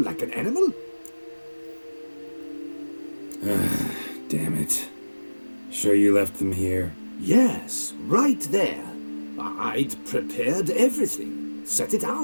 like an animal? Damn it. Sure you left them here? Yes, right there. I'd prepared everything, set it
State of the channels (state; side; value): inverted; both; correlation -1.00